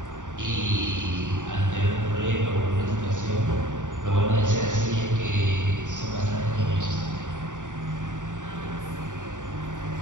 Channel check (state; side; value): late; left; 0.86 ms